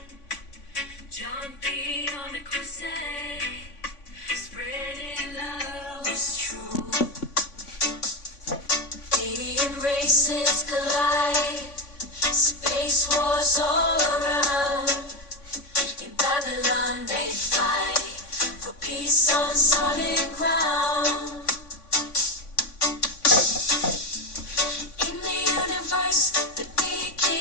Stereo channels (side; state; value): right; late; 3.5 ms